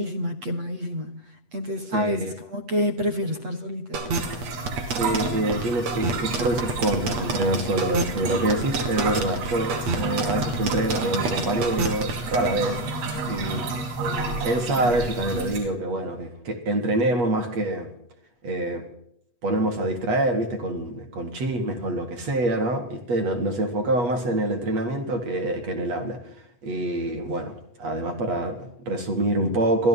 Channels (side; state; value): left; late; 8.2 ms